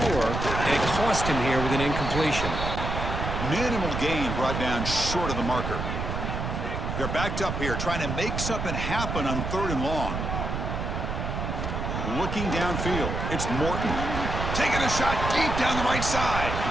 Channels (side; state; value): right; noise; rumble, 3 dB below the sound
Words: and it cost him here with an incompletion. Minimal gain brought down short of the marker. They're backed up here trying to make something happen on 3rd and long. looking downfield. It's Morton taking a shot deep down the right side.